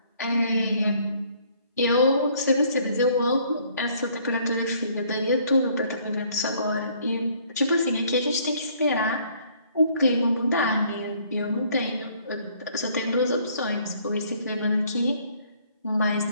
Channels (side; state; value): both; inverted; correlation -0.62